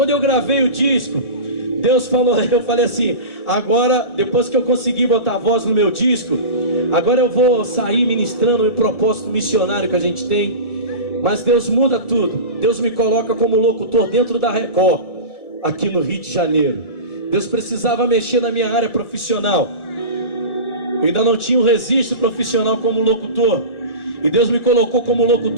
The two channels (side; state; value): right; late; 1.7 ms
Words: eu gravei o disco, Deus falou, eu falei assim: agora, depois que eu consegui botar a voz no meu disco, agora eu vou sair ministrando o propósito missionário que a gente tem. Mas Deus muda tudo. Deus me coloca como locutor dentro da Record, aqui no Rio de Janeiro. Deus precisava mexer na minha área profissional. Eu ainda não tinha um registro profissional como locutor, e Deus me colocou como